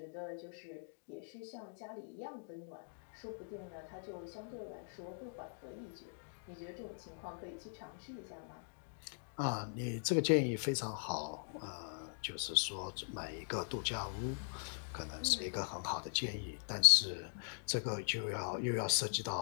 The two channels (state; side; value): silent; right; digital silence